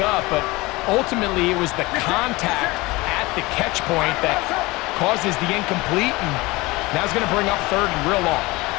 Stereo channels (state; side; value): quieter; right; 22.2 dB